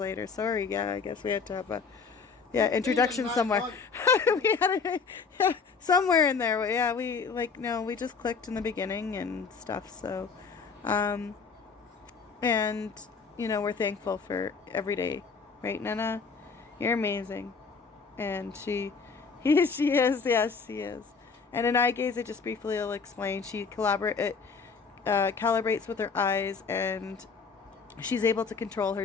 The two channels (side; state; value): right; quieter; 5.2 dB